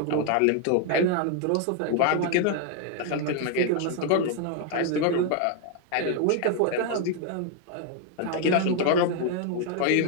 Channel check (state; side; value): different; both; correlation 0.01